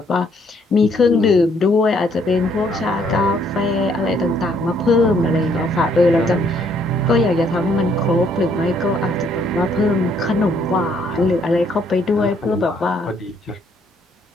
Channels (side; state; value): both; normal; correlation 0.67